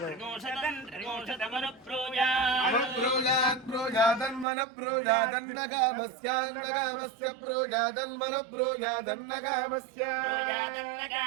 त्रिगोशतमनु प्रोजात् प्रोजात् प्रोजादन्मन प्रोजादन्नगामस्यान्नगामस्य प्रोजादन्मन प्रोजादन्नगामस्य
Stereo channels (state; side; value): drops out; left; at 4.5 s